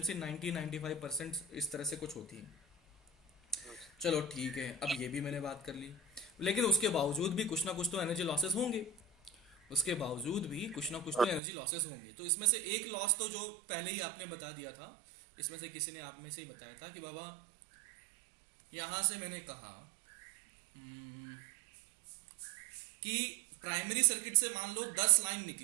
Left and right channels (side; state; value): left; drops out; at 11.4 s